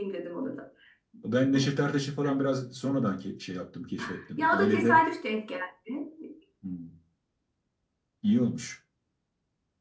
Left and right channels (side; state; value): both; identical; correlation 1.00